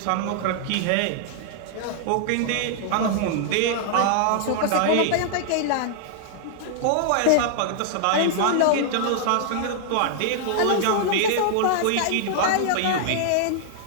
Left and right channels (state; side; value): different; both; correlation -0.01